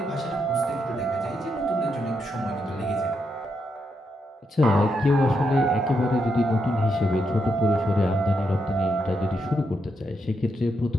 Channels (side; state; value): both; normal; correlation 0.81